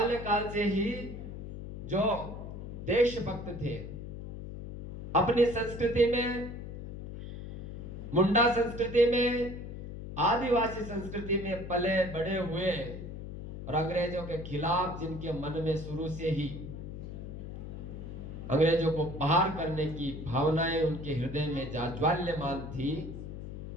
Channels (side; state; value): left; noise; hum, 9 dB below the sound